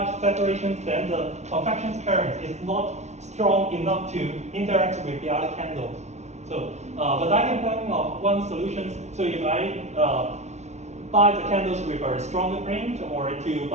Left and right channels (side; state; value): left; late; 0.32 ms